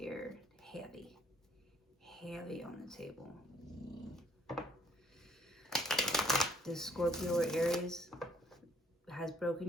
Heavy. Heavy on the table. This Scorpio or Aries has broken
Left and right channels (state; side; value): normal; both; correlation 0.64